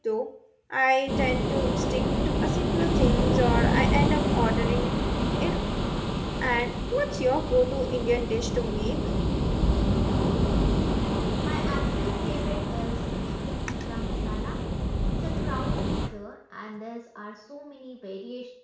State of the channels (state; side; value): identical; both; correlation 1.00